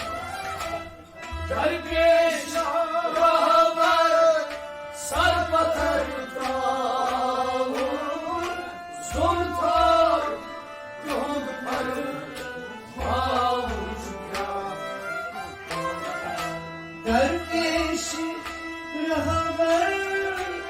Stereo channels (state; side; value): identical; both; correlation 1.00